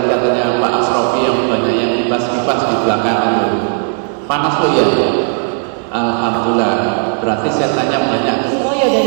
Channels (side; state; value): left; silent; 56 dB below the other